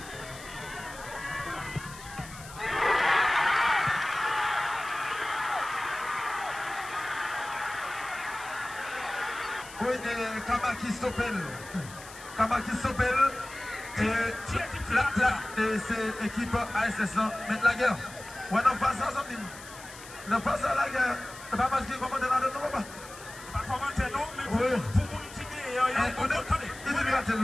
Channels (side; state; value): left; noise; hiss, 17 dB below the sound